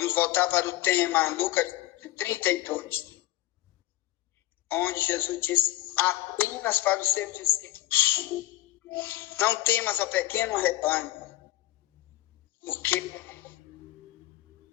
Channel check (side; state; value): right; quieter; 16.3 dB